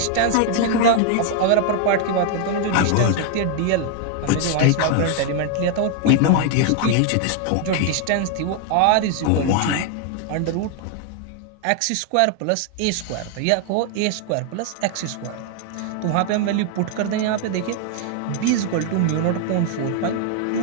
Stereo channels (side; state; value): both; different; correlation 0.00